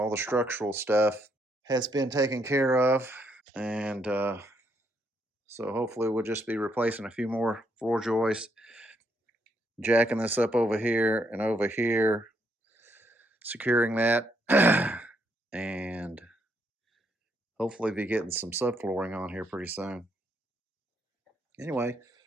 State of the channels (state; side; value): normal; both; correlation 0.74